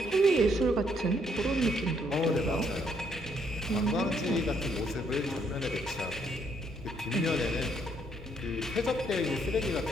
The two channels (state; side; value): normal; both; correlation 0.71